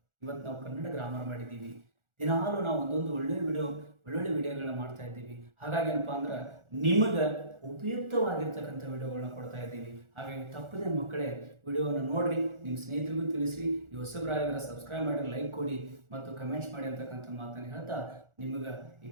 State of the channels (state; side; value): late; left; 1.4 ms